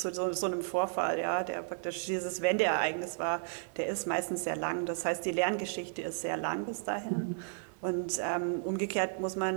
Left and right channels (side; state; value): left; silent; digital silence